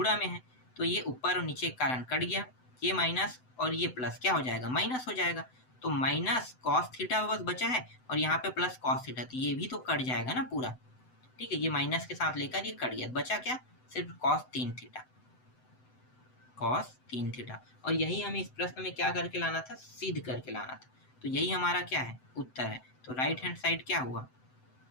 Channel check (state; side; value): late; right; 7.9 ms